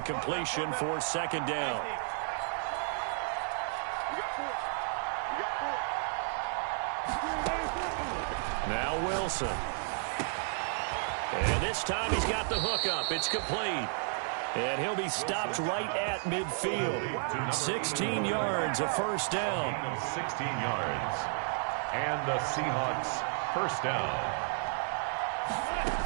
for 2nd down. Now Wilson. And this time he's got the hook up. It's complete. And he'll be stopped right at midfield. 16 yards, a 1st down. 16 yards. And the Seahawks 1st down.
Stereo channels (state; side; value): silent; left; 56 dB below the other